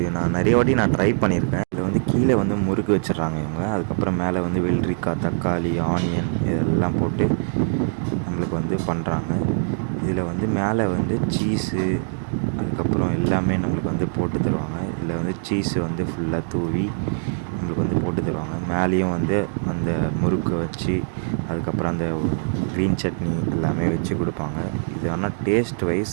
நான் நிறைய வாட்டி ட்ரை பண்ணியிருக்கேன். இதில் வந்து கீழே வந்து முறுக்கு வச்சிடுறாங்க இவங்க. அதுக்கப்புறம் மேலே வந்து வெள்ளரிக்காய், தக்காளி, ஆனியன் இதெல்லாம் போட்டு நம்மளுக்கு வந்து பண்ணுறாங்க. இதில் வந்து மேலே வந்து சீஸு அதுக்கப்புறம் எல்லாமே நம்மளுக்கு வந்து போட்டு தருவாங்க. இதில் வந்து சீஸு வந்து ஃபுல்லாக தூவி நம்மளுக்கு வந்து போட்டு தருவாங்க. மேலேயும் வந்து அந்த முறுக்கை வச்சு அதுக்கப்புறம் அந்த க்ரீன் சட்னி எல்லாமே வச்சு கொடுப்பாங்க. இது ஆனால் டேஸ்ட்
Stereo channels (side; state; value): left; silent; digital silence